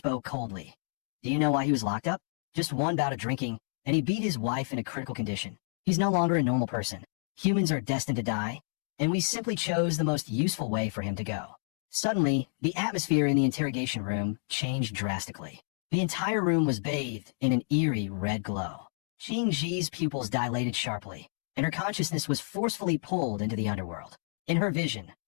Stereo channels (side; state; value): right; silent; digital silence